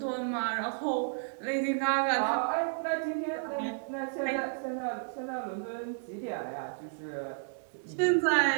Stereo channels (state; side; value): silent; left; digital silence